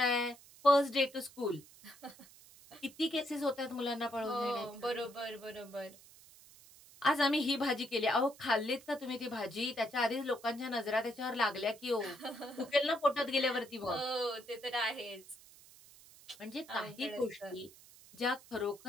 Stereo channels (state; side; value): noise; right; hiss, 22 dB below the sound